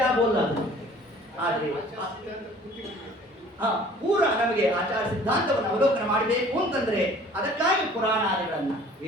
ಆಗೋಲ್ಲ ಅದು. ಆದರೆ ಪೂರ ನಮಗೆ ಆಚಾರ ಸಿದ್ಧಾಂತವನ್ನು ಅವಲೋಕನ ಮಾಡಬೇಕು ಅಂತಂದ್ರೆ ಅದಕ್ಕಾಗಿ ಪುರಾಣಾದಿಗಳನ್ನ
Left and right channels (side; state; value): both; normal; correlation 0.51